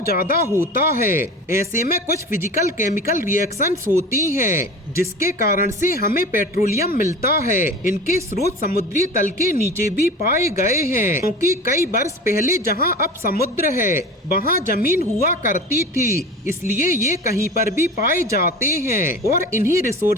ज्यादा होता है। ऐसे में कुछ फिजिकल केमिकल रिएक्शंस होती हैं जिसके कारण से हमें पेट्रोलियम मिलता है। इनके स्रोत समुद्री तल के नीचे भी पाए गए हैं, क्योंकि कई वर्ष पहले जहाँ अब समुद्र है वहाँ जमीन हुआ करती थी, इसलिए ये कहीं पर भी पाए जाते हैं। और इन्हीं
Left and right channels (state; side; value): normal; both; correlation 0.35